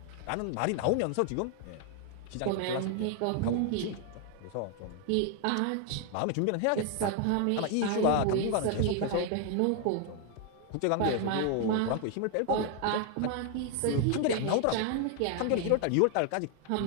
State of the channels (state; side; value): different; both; correlation 0.00